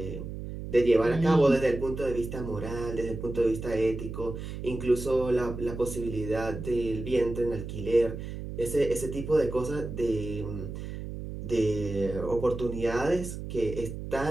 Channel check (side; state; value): right; noise; hum, 8 dB below the sound